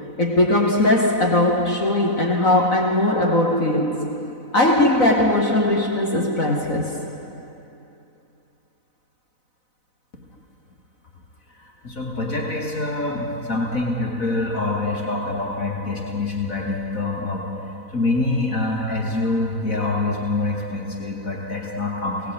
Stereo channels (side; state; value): right; late; 4.0 ms